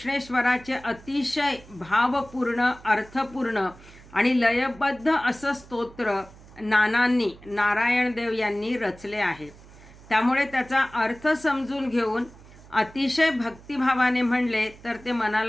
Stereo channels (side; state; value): right; noise; hum, 21 dB below the sound